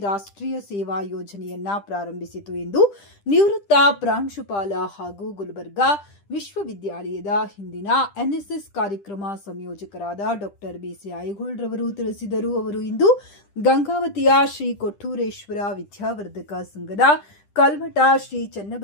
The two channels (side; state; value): right; late; 10 ms